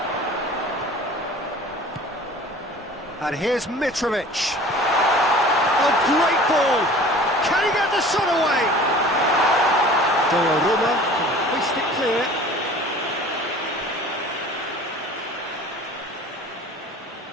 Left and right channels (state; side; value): normal; both; correlation 0.44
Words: And here's Mitrovic. A great ball. Can he get the shot away? Donnarumma can hoist it clear.